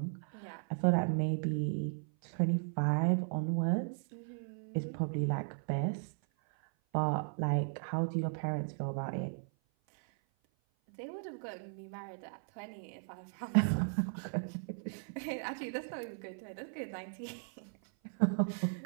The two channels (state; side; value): silent; left; 54 dB below the other